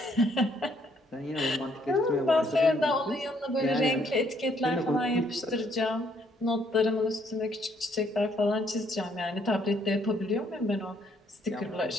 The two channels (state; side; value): normal; both; correlation 0.68